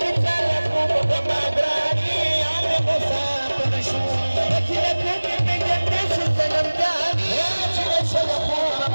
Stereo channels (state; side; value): inverted; both; correlation -1.00